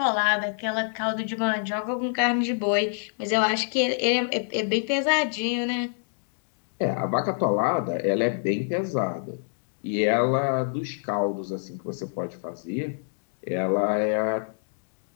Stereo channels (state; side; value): silent; right; digital silence